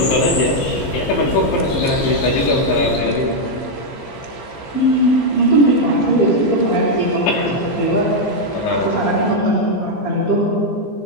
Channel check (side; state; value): right; late; 15 ms